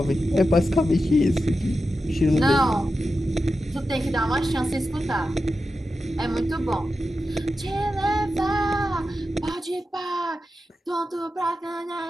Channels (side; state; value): both; normal; correlation 0.91